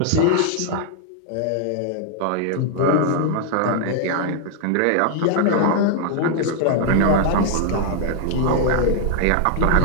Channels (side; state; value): both; different; correlation 0.00